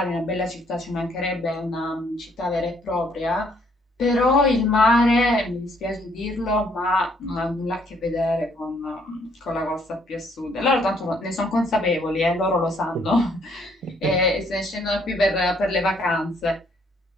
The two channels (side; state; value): both; normal; correlation 0.67